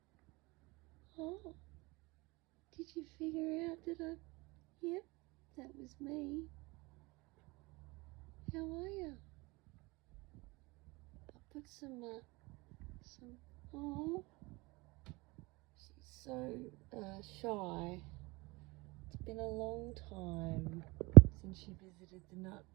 Oh, did you figure out that I... Yep, that was me. How are you? I put some... Oh, she's so shy. It's been a long time since she visited the nut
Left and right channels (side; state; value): left; quieter; 24.3 dB